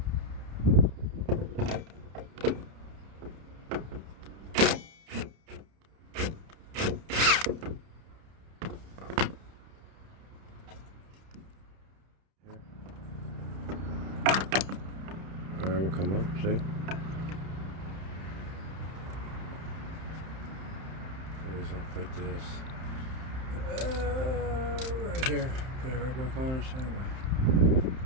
Alright, we'll come up, see? We're just gonna put this right here. Put it right back on the same way.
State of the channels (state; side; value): late; left; 30 ms